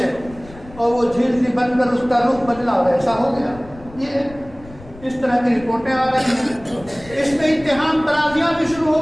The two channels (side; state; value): left; noise; rumble, 19 dB below the sound